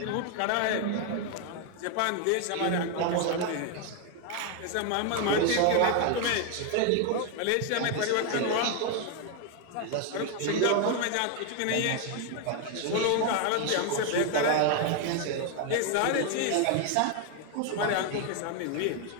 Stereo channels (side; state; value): both; different; correlation 0.01